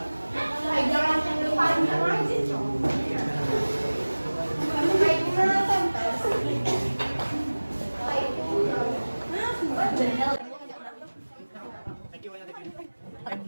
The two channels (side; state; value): both; inverted; correlation -1.00